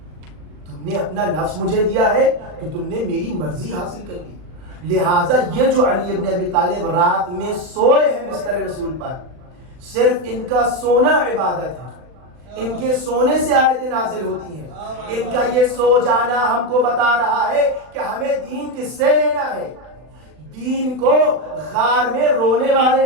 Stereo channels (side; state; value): left; late; 39 ms